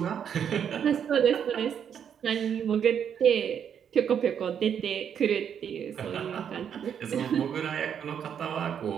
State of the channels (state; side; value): quieter; left; 8.3 dB